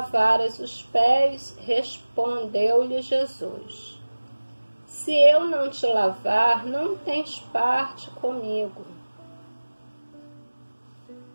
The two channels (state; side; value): inverted; both; correlation -1.00